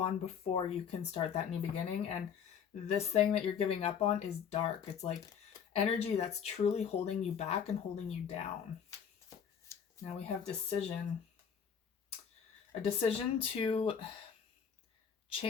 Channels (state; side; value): quieter; right; 7.5 dB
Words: before you can start that new beginning. And this thing that you're giving up on is dark. It's like energy that's truly holding you back and holding you down. Now we have decision. A decision to